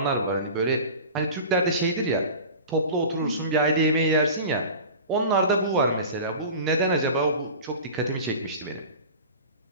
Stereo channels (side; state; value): both; inverted; correlation -0.36